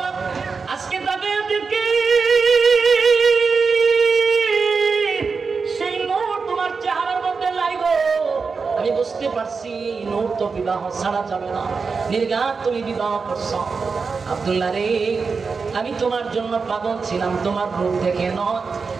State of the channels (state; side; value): quieter; left; 4.9 dB